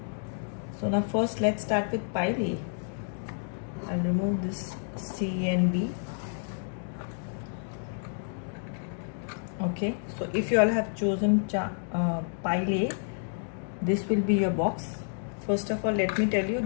So now first let's start with pile A. I'll remove this C and B. Okay, so if you all have chosen pile A, this will be your box. First of all, let me tell you,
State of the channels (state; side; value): silent; right; digital silence